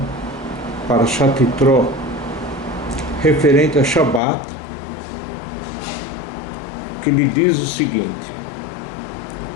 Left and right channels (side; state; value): right; drops out; at 4.2 s